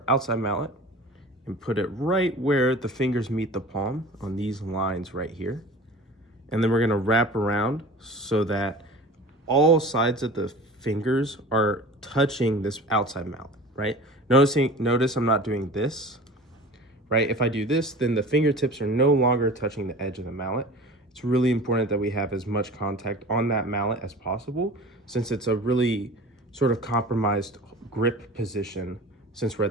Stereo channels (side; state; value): both; normal; correlation 0.39